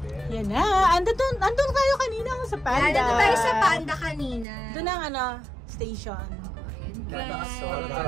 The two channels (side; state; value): left; drops out; at 4.5 s